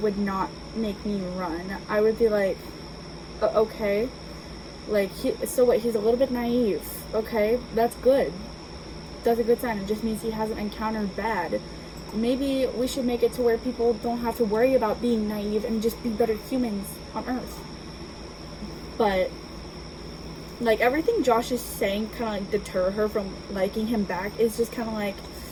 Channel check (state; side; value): identical; both; correlation 1.00